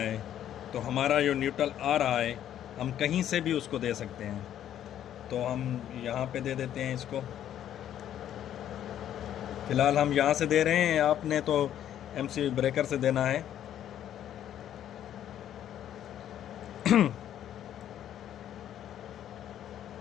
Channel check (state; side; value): quieter; right; 10.9 dB